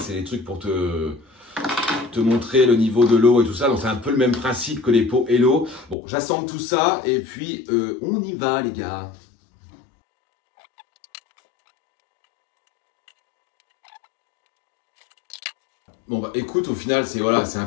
des trucs pour te montrer le niveau de l'eau et tout ça. Donc c'est un peu le même principe que les pots Hello. Bon, j'assemble tout ça et puis on y va les gars. Bon bah écoute, au final c'est voilà, c'est un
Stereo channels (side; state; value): right; drops out; at 6.0 s